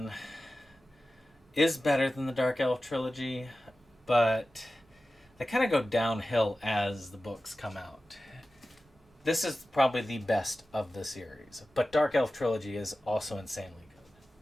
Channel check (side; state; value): both; normal; correlation 0.95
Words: is better than the Dark Elf trilogy, but they kind of go downhill as the books come out. This is probably the best of the series, but Dark Elf trilogy is also insanely